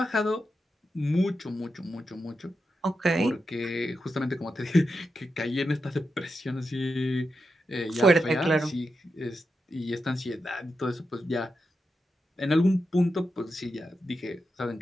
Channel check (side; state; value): both; normal; correlation 0.88